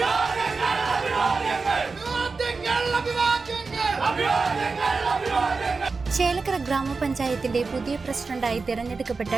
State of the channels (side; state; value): left; quieter; 4.3 dB